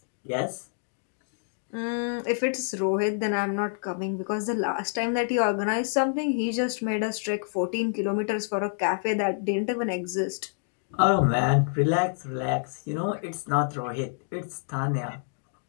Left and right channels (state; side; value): silent; right; digital silence